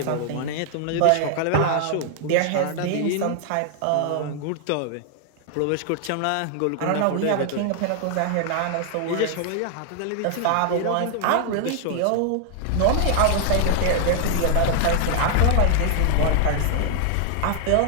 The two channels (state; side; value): different; both; correlation 0.00